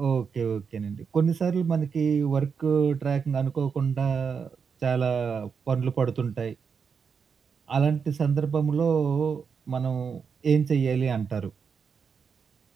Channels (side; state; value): left; quieter; 6.1 dB